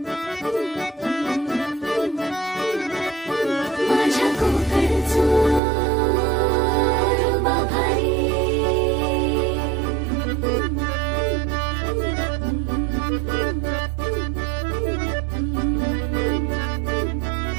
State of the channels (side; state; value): left; drops out; at 5.6 s